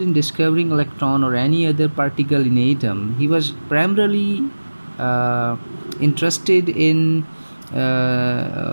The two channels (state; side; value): inverted; both; correlation -1.00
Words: in discovering electron or any other particle in atom. He was primarily interested in